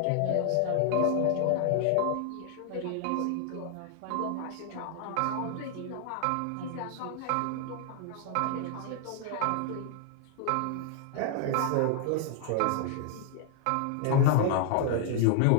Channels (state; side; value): different; both; correlation 0.00